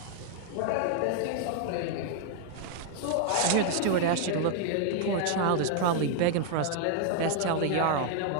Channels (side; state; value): both; different; correlation 0.00